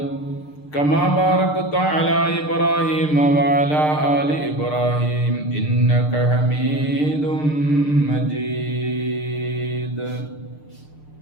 كما باركت على إبراهيم وعلى آل إبراهيم إنك حميد مجيد.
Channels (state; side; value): late; right; 6.6 ms